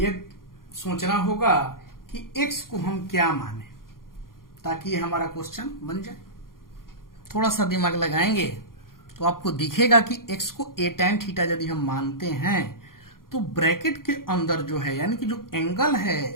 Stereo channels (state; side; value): late; right; 0.91 ms